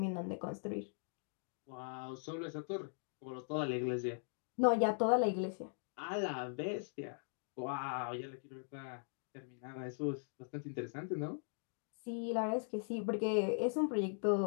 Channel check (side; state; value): right; silent; digital silence